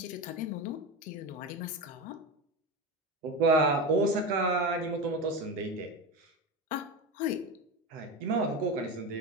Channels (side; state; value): both; normal; correlation 0.21